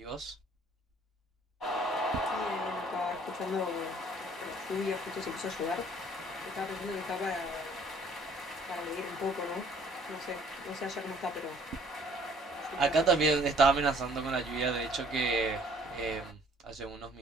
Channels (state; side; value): normal; both; correlation 0.58